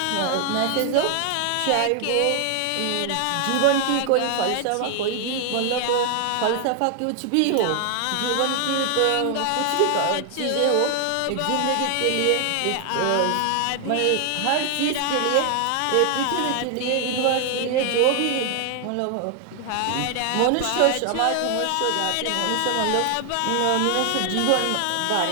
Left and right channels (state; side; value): different; both; correlation 0.00